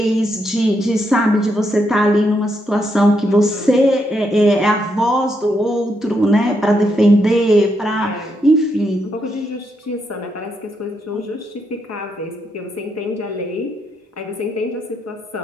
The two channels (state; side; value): normal; both; correlation 0.79